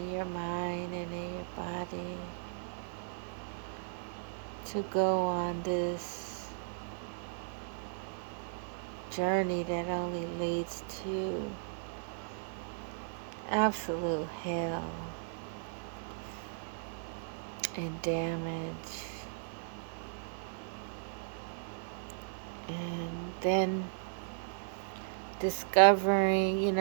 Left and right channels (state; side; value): silent; left; digital silence